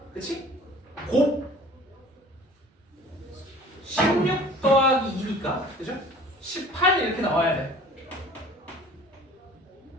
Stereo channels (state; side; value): normal; both; correlation 0.47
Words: 그치? 곱 16 더하기 2니까 그죠? 18 이렇게 나와야 돼.